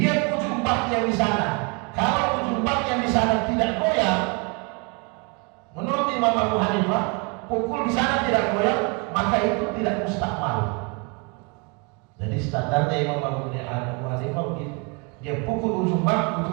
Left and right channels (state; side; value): quieter; left; 31.9 dB